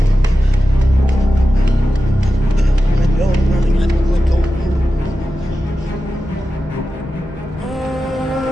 I know I'm running. I'm like going.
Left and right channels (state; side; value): normal; both; correlation 0.93